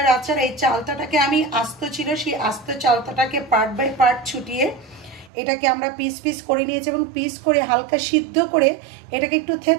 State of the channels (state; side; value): drops out; left; at 5.3 s